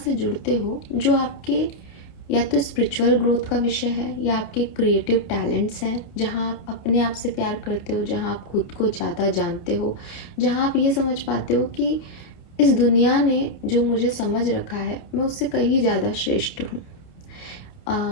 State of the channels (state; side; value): late; right; 28 ms